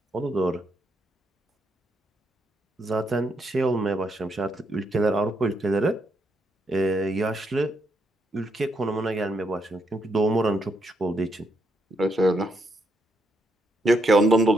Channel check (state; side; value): normal; both; correlation 0.78